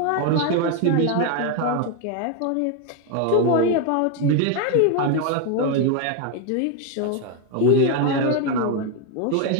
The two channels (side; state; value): both; different; correlation 0.01